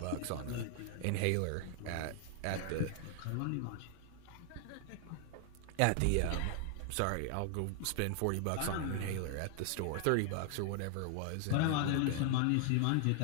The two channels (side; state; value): both; different; correlation 0.00